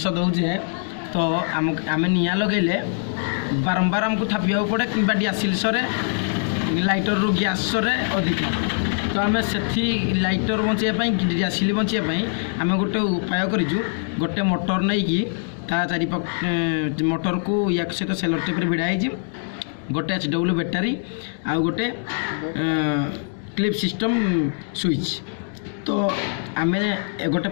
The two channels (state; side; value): silent; right; digital silence